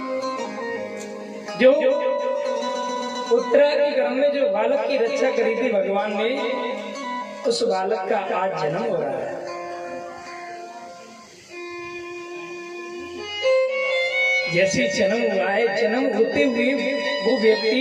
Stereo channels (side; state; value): both; identical; correlation 1.00